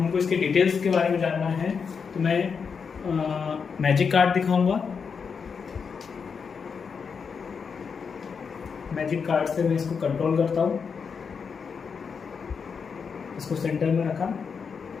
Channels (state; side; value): quieter; right; 5.9 dB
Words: इसके डिटेल्स के बारे में जानना है तो मैं मैजिक कार्ड दिखाऊंगा। मैजिक कार्ड से मैं इसको कंट्रोल करता हूँ। इसको सेंटर में रखा,